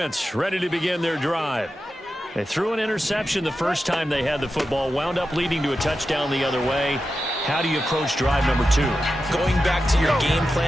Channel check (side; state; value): both; normal; correlation 0.91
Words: ready to begin their drive. They threw an interception the first time they had the football, wound up leading to a touchdown the other way. How do you approach drive number 2? Going back to your game